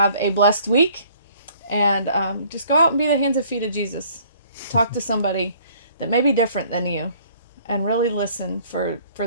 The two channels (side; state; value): both; inverted; correlation -0.57